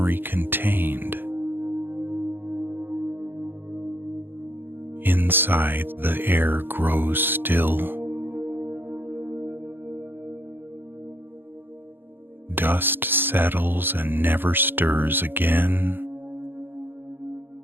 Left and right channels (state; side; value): late; left; 0.099 ms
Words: contained. Inside, the air grows still. Dust settles and never stirs again.